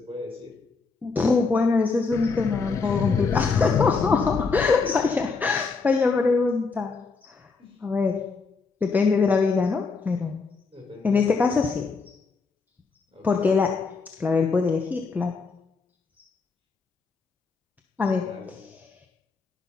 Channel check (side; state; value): right; quieter; 4.5 dB